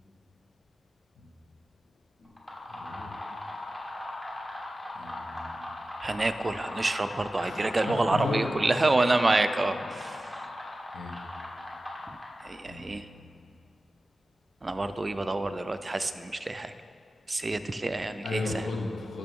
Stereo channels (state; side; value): normal; both; correlation 0.95